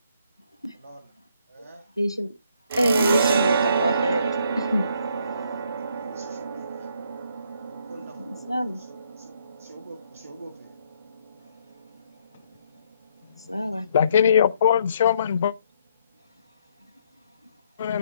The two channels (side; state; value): both; inverted; correlation -0.70